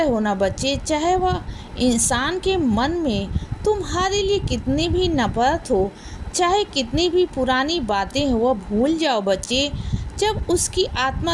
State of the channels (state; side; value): identical; both; correlation 1.00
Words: हो ना बच्चे, चाहे वह इंसान के मन में तुम्हारे लिए कितनी भी नफरत हो, चाहे कितनी भी पुरानी बातें हो, वह भूल जाओ बच्चे। जब उसकी